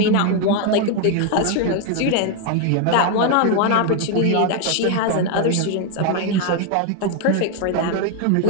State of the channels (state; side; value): different; both; correlation 0.01